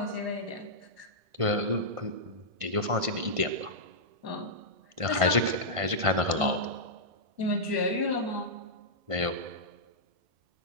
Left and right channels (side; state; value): left; late; 1.5 ms